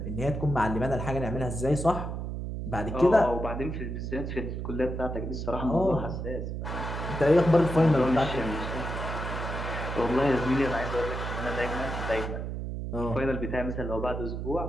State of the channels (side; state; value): right; noise; hum, 4 dB below the sound